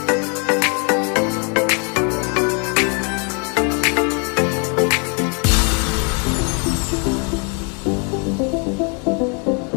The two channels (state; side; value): quieter; right; 37.0 dB